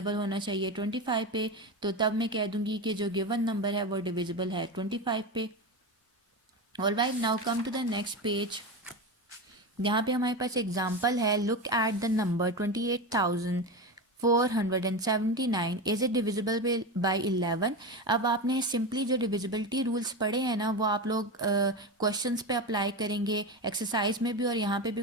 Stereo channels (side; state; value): both; normal; correlation 0.20